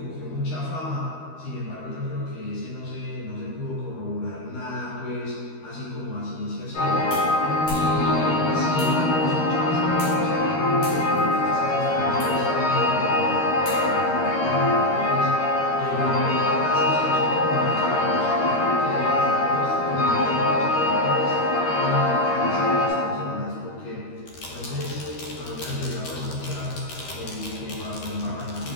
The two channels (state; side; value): late; right; 13 ms